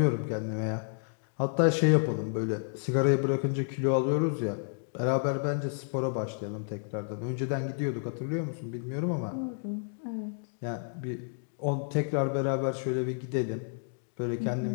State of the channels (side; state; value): right; silent; digital silence